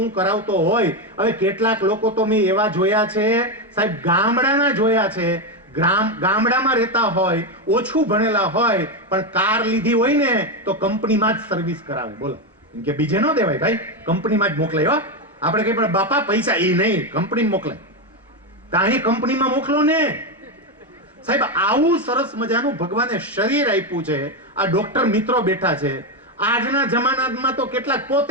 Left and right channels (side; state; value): both; normal; correlation 0.09